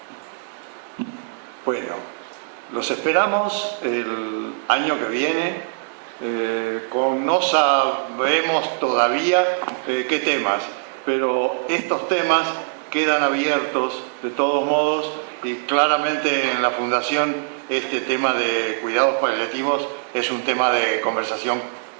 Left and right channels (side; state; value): left; silent; digital silence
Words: Bueno, los esperamos el año que viene. No sabemos todavía qué temas, pero estos temas quedan abiertos de todos modos, y claramente en la Fundación este tema de cuidados paliativos es un tema de conversación